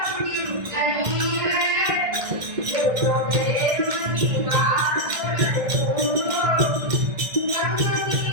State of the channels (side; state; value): left; late; 1.6 ms